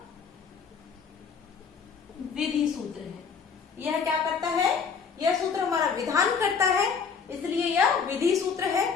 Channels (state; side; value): quieter; right; 6.0 dB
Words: विधि सूत्र है। यह क्या करता है, यह सूत्र हमारा विधान करता है, इसलिए यह विधि सूत्र है।